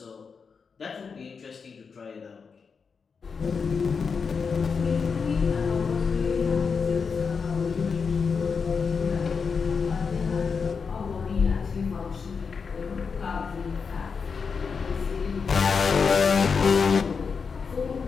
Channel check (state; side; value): quieter; right; 5.5 dB